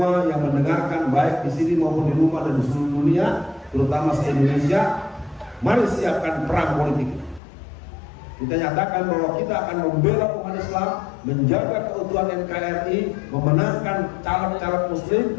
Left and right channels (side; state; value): right; drops out; at 7.4 s